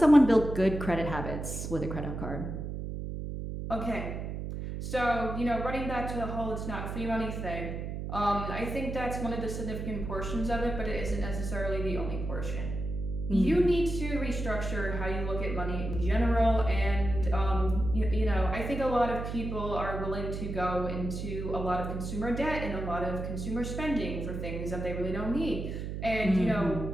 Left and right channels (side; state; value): right; noise; hum, 5 dB below the sound